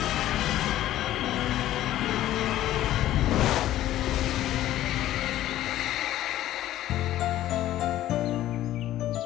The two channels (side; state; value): right; quieter; 13.7 dB